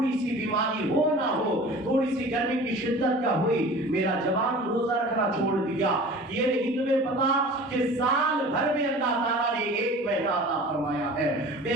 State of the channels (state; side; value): normal; both; correlation 0.41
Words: سی بیماری ہو نہ ہو، تھوڑی سی گرمی کی شدت کا ہوئی، میرا جوان روزہ رکھنا چھوڑ دیا۔ یہ نہیں تمہیں پتا کہ سال بھر میں اللہ تعالیٰ نے ایک مہینہ عطا فرمایا ہے،